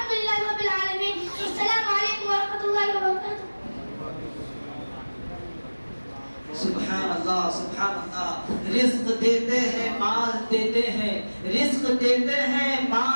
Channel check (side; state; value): both; inverted; correlation -1.00